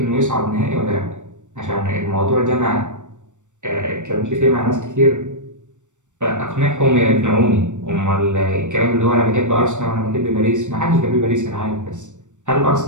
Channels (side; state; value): left; late; 0.85 ms